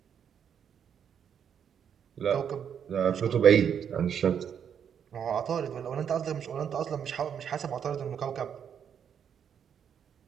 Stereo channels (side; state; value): left; quieter; 8.1 dB